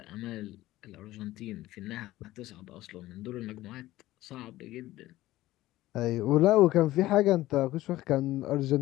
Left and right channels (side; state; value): right; quieter; 16.3 dB